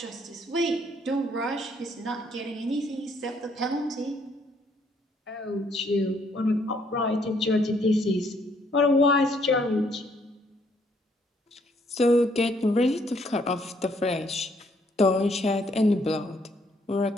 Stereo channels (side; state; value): both; normal; correlation 0.68